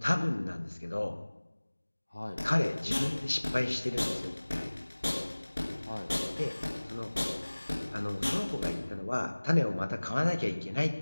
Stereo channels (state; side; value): inverted; both; correlation -1.00